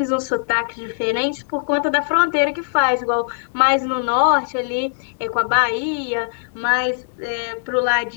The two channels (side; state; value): right; silent; digital silence